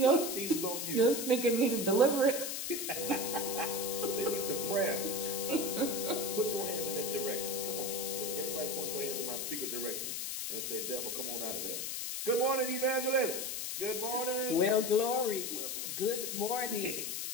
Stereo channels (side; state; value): left; noise; hiss, 3 dB below the sound